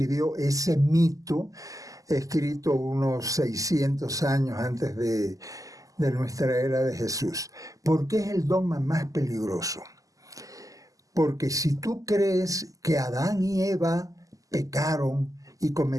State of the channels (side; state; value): left; late; 0.17 ms